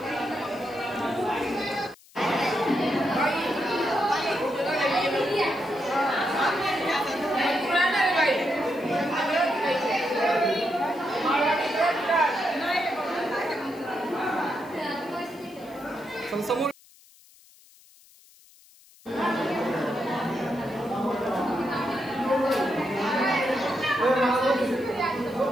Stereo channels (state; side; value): noise; left; hiss, 26 dB below the sound